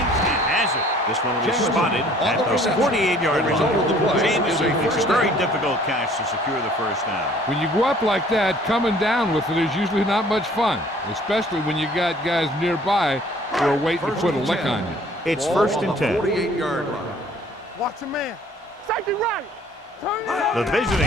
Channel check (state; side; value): normal; both; correlation 0.55